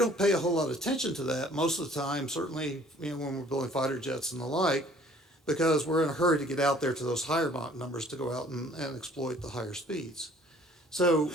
pay a whole lot of attention to that most of the time, certainly when we're building fighter jets and the like, because we're in a hurry to get out there to those higher Mach numbers to go out and exploit the higher speeds. So,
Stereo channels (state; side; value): normal; both; correlation 0.55